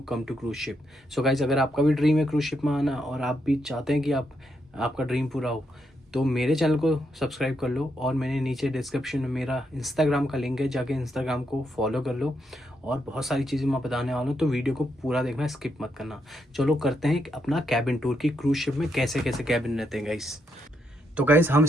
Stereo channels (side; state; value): both; normal; correlation 0.79